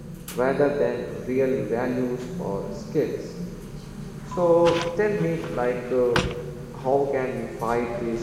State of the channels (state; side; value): identical; both; correlation 1.00